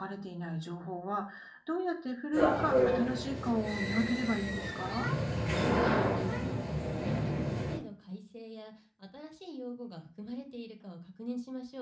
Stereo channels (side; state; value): both; identical; correlation 1.00